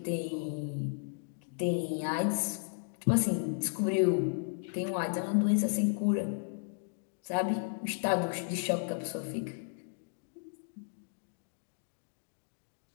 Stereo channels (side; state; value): right; silent; digital silence